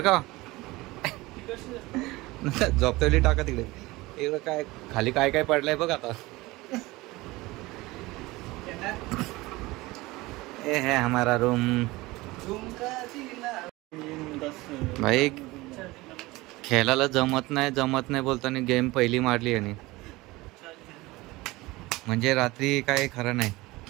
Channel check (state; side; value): quieter; left; 20.8 dB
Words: झोपतेली टाका तिकडे. इकडं काय खाली काय काय पडलंय बघ आता. ये है हमारा रूम। भाई खेळायला जमत नाही बोलताना गेम पहिली मारली आणि म्हणजे रात्री काय खरं नाही,